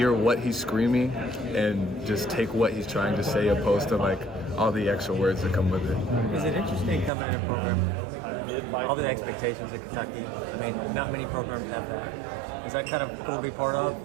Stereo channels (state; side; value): drops out; left; at 7.1 s